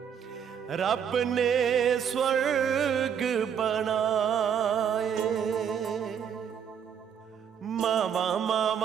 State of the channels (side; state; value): left; quieter; 8.0 dB